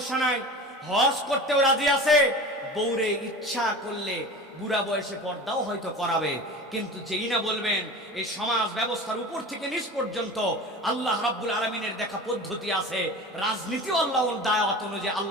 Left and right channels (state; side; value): normal; both; correlation 0.34